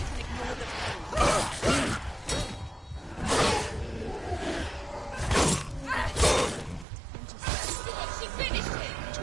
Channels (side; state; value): left; drops out; at 6.9 s